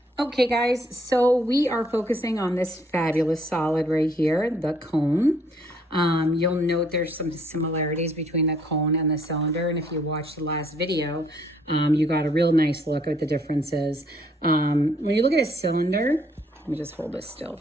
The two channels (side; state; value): both; normal; correlation 0.65